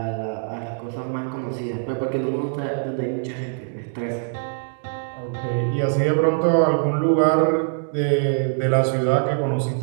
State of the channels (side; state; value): left; silent; digital silence